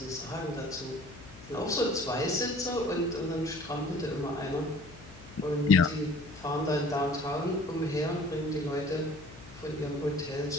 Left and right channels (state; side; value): noise; left; hum, 19 dB below the sound